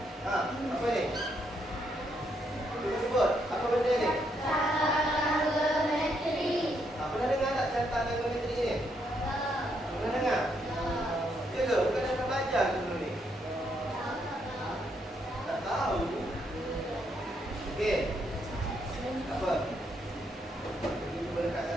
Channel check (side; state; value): both; normal; correlation 0.76